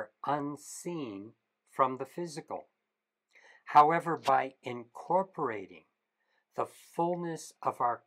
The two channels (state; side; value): identical; both; correlation 1.00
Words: unseen from the physical. However, by incorporating the fullness of our